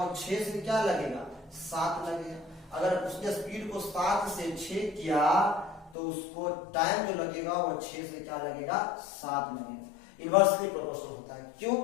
6 से क्या लगेगा 7 लगेगा। अगर उसने स्पीड को 7 से 6 किया तो उसको टाइम जो लगेगा वो 6 से क्या लगेगा 7 लगेगा। इनवर्सली प्रोपोर्शनल होता है। क्यों?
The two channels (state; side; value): drops out; right; at 6.0 s